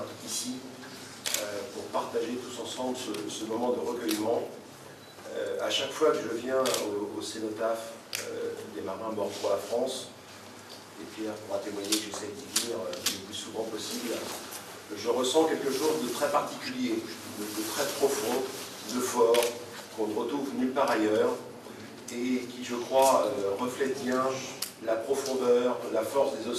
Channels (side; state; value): both; identical; correlation 1.00